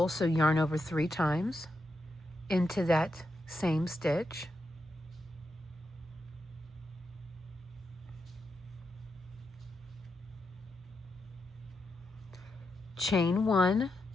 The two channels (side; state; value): both; normal; correlation 0.85